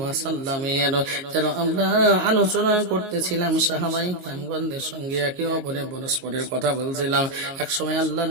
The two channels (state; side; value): late; left; 22 ms